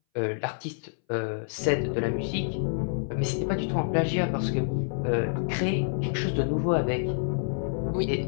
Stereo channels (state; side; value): silent; right; 59 dB below the other